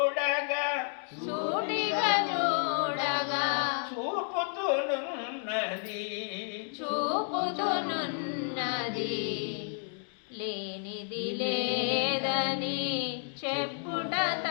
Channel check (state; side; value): silent; right; 57 dB below the other